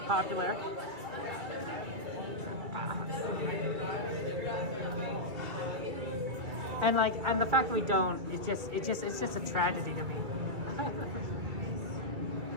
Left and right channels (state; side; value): late; left; 2.3 ms